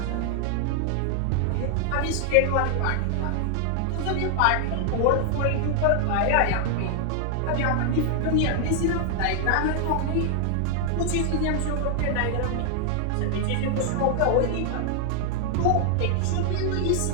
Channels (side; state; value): both; different; correlation 0.00